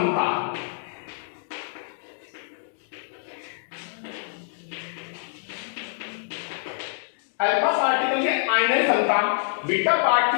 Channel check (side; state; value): right; silent; digital silence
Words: अल्फा पार्टिकल की आयन क्षमता बीटा